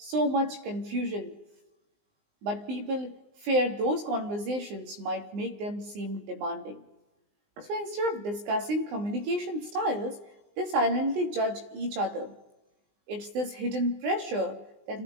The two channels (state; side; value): late; left; 19 ms